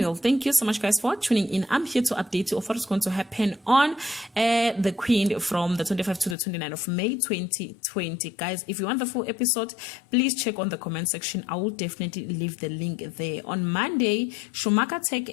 Thank you so much guys for tuning in. I'm here to update you of what is going to happen on the Queen from the 25th to the 29th of May 2020. Guys, if you want the full episode, please check on the comment section. I will definitely leave the link there. On Monday, Schumacher take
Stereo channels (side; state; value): right; drops out; at 6.4 s